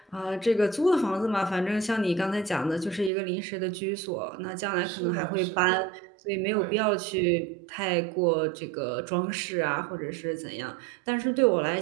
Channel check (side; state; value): left; drops out; at 3.1 s